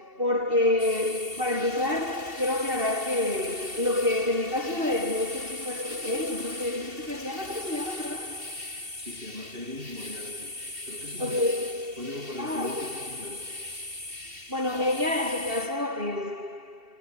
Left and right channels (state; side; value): late; left; 2.7 ms